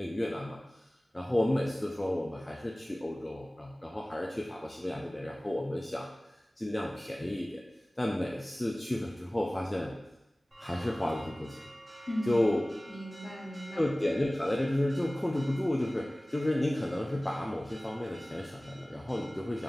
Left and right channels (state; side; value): normal; both; correlation 0.98